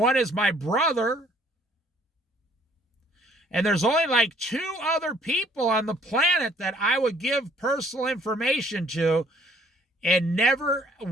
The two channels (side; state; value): both; normal; correlation 0.60